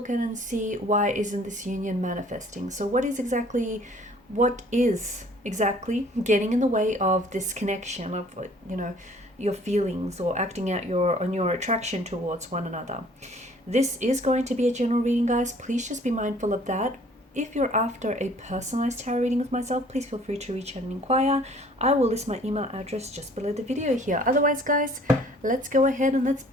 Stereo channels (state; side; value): normal; both; correlation 0.55